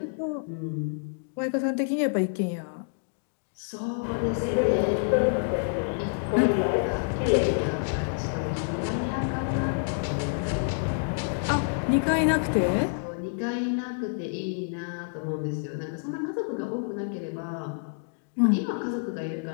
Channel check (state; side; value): silent; right; digital silence